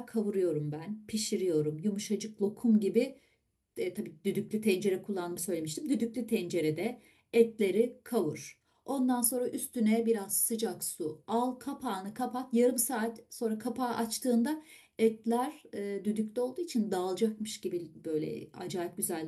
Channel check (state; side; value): identical; both; correlation 1.00